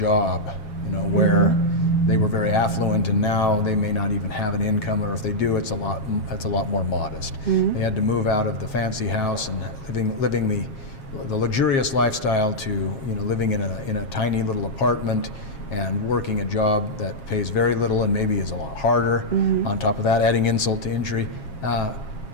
where they were very affluent and now they may not even have an income, or if they do, it's a lot more modest. They had to move out of the fancy house and living the luxurious lifestyle to living in a tiny little apartment and working a job that pays very little and maybe is a lot harder. On top of that, adding insult to injury,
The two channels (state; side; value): late; right; 7.4 ms